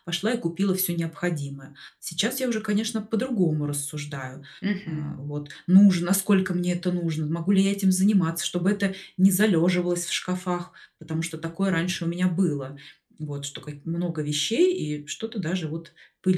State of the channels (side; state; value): both; identical; correlation 1.00